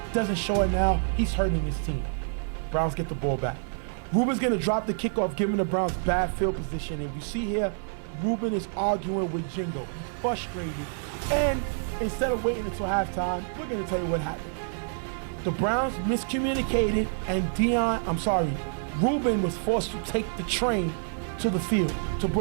Doesn't show it now. He's hurting his team. Browns get the ball back. Ruben's gonna drop the kickoff, giving the Browns bad field position. And you see here, Ruben is arguing with Jingo. He's frustrated. And instead of waiting until halftime, we're gonna tell you what happened. The Browns miscommunicated, and Ruben was forced to take the train to the field, to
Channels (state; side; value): silent; left; digital silence